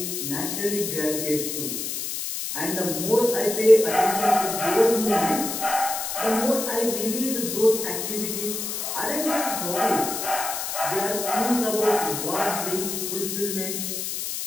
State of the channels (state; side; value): noise; left; hiss, 4 dB below the sound